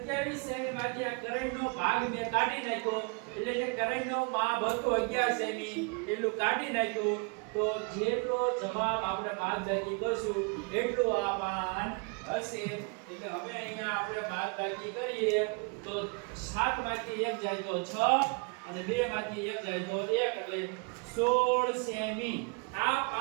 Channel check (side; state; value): left; quieter; 33.2 dB